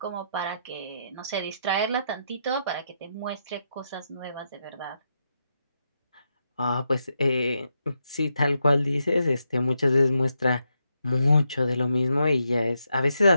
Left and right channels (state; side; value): inverted; both; correlation -0.83